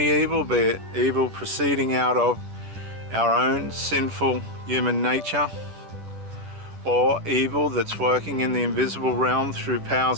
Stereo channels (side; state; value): left; late; 10 ms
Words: evil, be it evil proceeding out of our own sinful human nature, or evil that's working in the invisible realm through